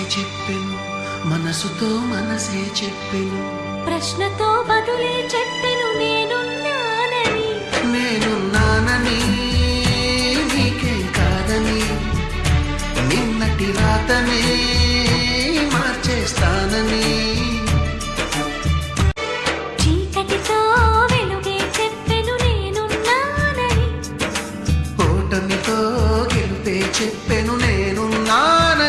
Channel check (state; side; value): identical; both; correlation 1.00